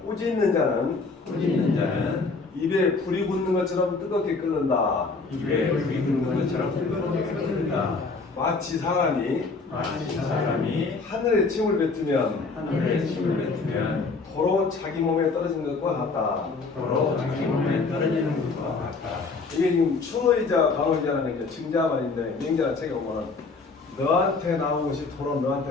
꾸짖는 자는 입에 불이 붙는 것처럼 뜨겁게 끓는다. 마치 사람이 하늘에 침을 뱉으면 도로 자기 몸에 떨어지는 것과 같다. 이게 지금 추노이자 방어이자라는 게 증자말인데 명제라는 책에 보면 너한테 나온 것이 도로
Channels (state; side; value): quieter; right; 4.1 dB